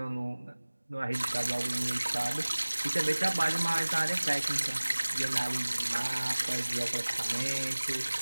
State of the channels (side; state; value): both; inverted; correlation -1.00